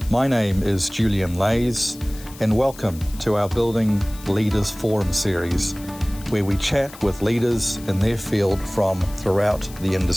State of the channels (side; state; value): left; noise; hiss, 19 dB below the sound